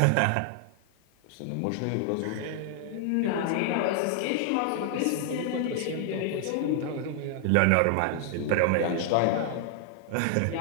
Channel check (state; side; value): different; both; correlation 0.00